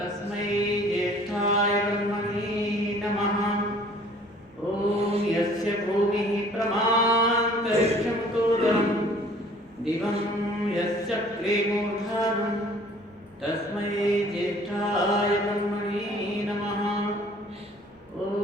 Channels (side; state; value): both; normal; correlation 0.53